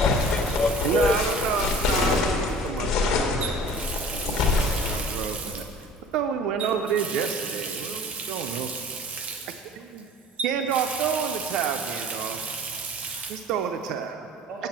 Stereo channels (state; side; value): normal; both; correlation 0.44